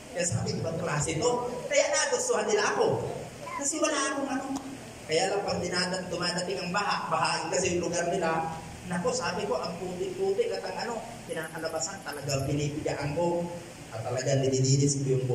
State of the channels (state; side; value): identical; both; correlation 1.00